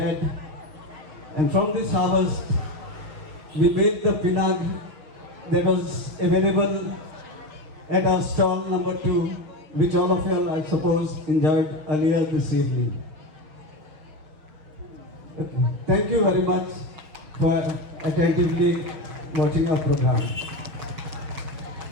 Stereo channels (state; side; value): late; left; 6.5 ms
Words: And from this harvest, we made the pinag that was available at our stall number 2, which all of you, I suppose, enjoyed earlier this evening. Okay. Thank you very much for attentively watching our program.